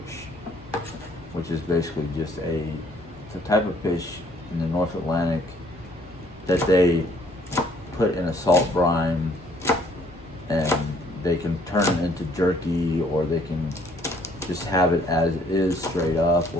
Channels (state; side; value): normal; both; correlation 0.62